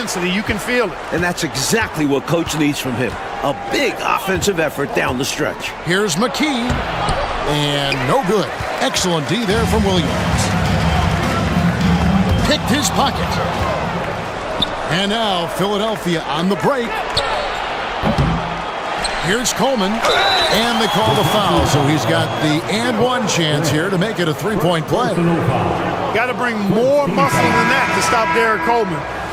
You can feel it. And that's exactly what Coach needs from him. A big offensive effort down the stretch. Here's McKee, and no good. Excellent D there from Williams. Picked his pocket. And now Philadelphia on the break. Here's Coleman, and they call the foul, so he's got the and one chance here to make it a three-point play. Got to bring more muscle than that to stop Derek Coleman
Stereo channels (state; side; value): identical; both; correlation 1.00